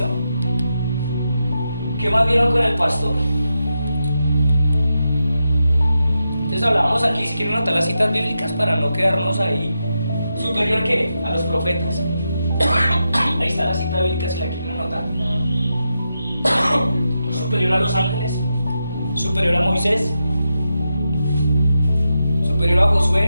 ¿Qué más vieron con el pastor? Entonces hablábamos aquí, si quieren anotar las citas bíblicas para no quedarnos ahí. ¿Superior qué? A los profetas. Ahí está la cita bíblica si la quieren anotar. Superior a los ángeles. Superior a Moisés. Superior a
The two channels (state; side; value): inverted; both; correlation -0.87